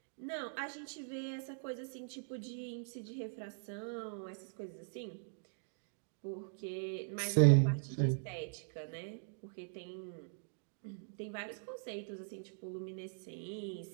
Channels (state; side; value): silent; left; digital silence